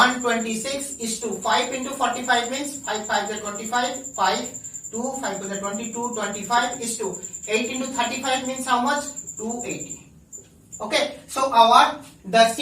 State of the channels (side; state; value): both; identical; correlation 1.00